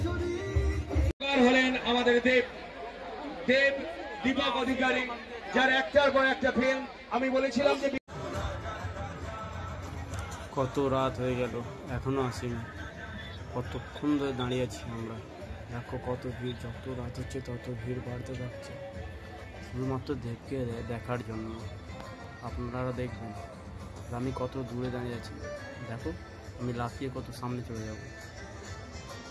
হলেন আমাদের দেব দীপক অধিকারী, যার একটার পর একটা ফিল্ম। আমি বলেছিলাম যে কত রাত হয়ে গেল এখনো আসেনি, কতক্ষণ ধরে দাঁড়িয়ে আছি আমরা। দেখো কত ভিড়, যত রাত হচ্ছে তত ভিড় বাড়তে থাকছে, শুধুমাত্র দেবকে দেখার জন্য। আপনারা দেখবেন আমি কত দূরে দাঁড়িয়ে আছি, দেখো আমি লাফিয়ে কত সামনে চলে যাব।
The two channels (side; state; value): both; identical; correlation 1.00